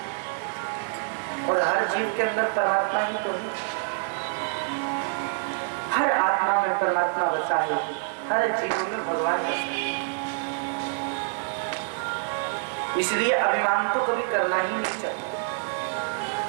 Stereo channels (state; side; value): silent; left; digital silence